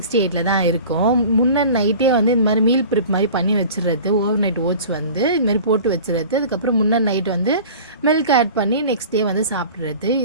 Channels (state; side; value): inverted; both; correlation -0.41